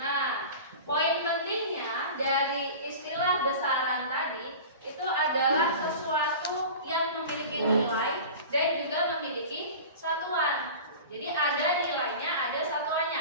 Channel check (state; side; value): inverted; both; correlation -0.35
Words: Nah, poin pentingnya dari istilah besaran tadi itu adalah sesuatu yang memiliki nilai dan juga memiliki satuan. Jadi ada nilainya, ada